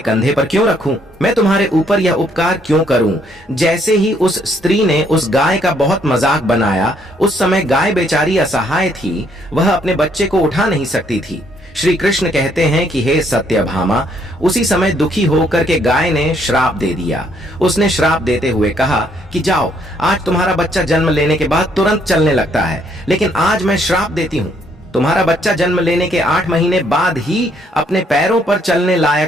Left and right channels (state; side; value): normal; both; correlation 0.69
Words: पर क्यों रखूं? मैं तुम्हारे ऊपर यह उपकार क्यों करूं? जैसे ही उस स्त्री ने उस गाय का बहुत मजाक बनाया, उस समय गाय बेचारी असहाय थी, वह अपने बच्चे को उठा नहीं सकती थी। श्री कृष्ण कहते हैं कि हे सत्यभामा, उसी समय दुखी होकर के गाय ने श्राप दे दिया। उसने श्राप देते हुए कहा कि जाओ, आज तुम्हारा बच्चा जन्म लेने के बाद तुरंत चलने लगता है, लेकिन आज मैं श्राप देती हूँ, तुम्हारा बच्चा जन्म लेने के 8 महीने बाद ही अपने पैरों पर चलने